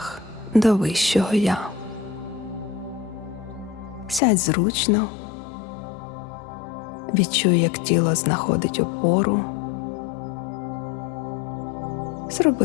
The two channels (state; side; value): drops out; right; at 4.2 s